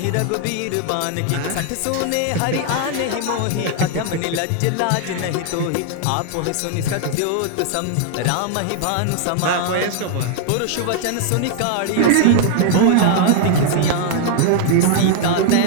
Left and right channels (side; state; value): both; different; correlation 0.00